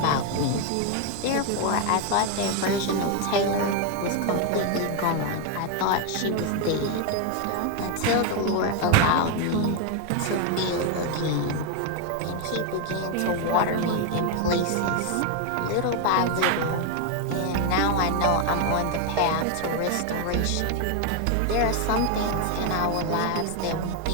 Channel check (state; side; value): different; both; correlation 0.01